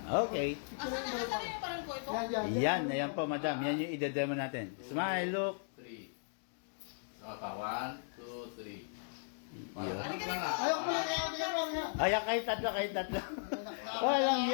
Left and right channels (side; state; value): right; silent; digital silence